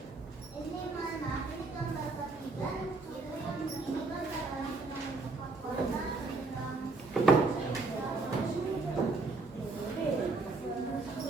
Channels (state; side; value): quieter; left; 3.7 dB